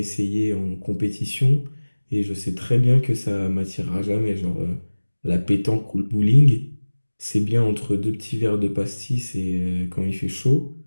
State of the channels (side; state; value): both; inverted; correlation -1.00